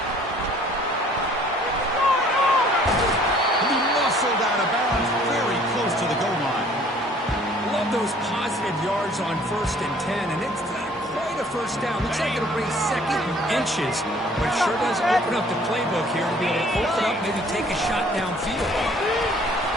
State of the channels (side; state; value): both; normal; correlation 0.56